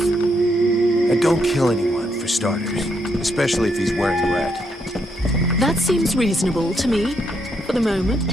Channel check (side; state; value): both; normal; correlation 0.77